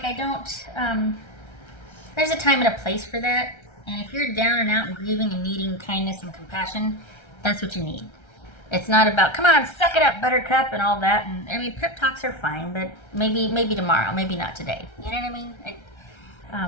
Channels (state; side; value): late; right; 1.3 ms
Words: I don't, there's a time and a place for that. And if you're down and out and grieving and needing kindness and compassion, that's what you need. It's not about, come on, suck it up, buttercup, and all that. And I mean, pep talks are fine, but maybe tomorrow, maybe not today. You know what I mean?